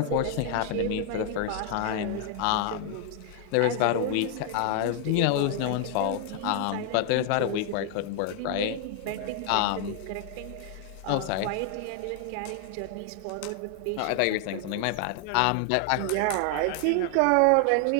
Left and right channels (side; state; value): both; different; correlation 0.00